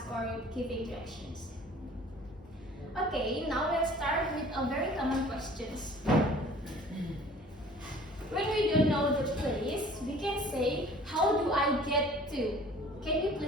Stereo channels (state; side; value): normal; both; correlation 0.49